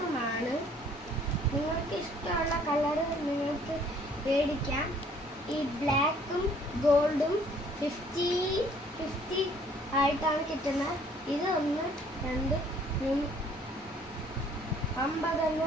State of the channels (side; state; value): both; normal; correlation 0.59